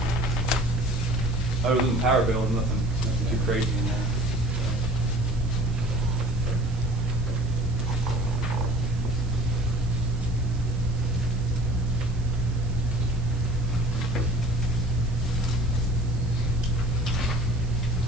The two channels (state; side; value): noise; right; hiss, 24 dB below the sound